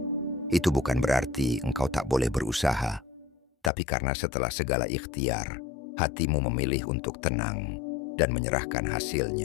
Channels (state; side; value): drops out; right; at 3.7 s